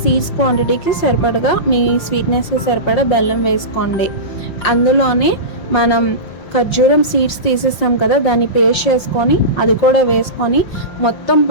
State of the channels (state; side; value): late; right; 5.8 ms